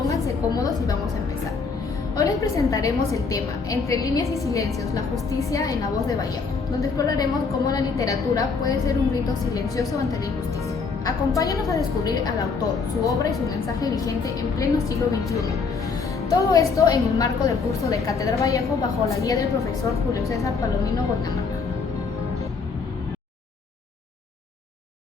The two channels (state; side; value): quieter; right; 4.9 dB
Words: cómodos y vamos a empezar. Hoy les presentaremos el tema Entre líneas y silencios, la justicia en la voz de Vallejo, donde exploraremos cómo la literatura puede ser un grito silencioso ante la injusticia. Acompáñanos a descubrir al autor, su obra y su mensaje vigente en pleno siglo XXI. Todo esto en el marco del curso de Cátedra Vallejo bajo la guía del profesor Julio César Palomino Guaynamaca.